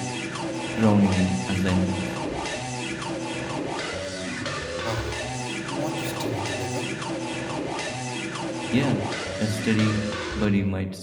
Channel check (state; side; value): identical; both; correlation 1.00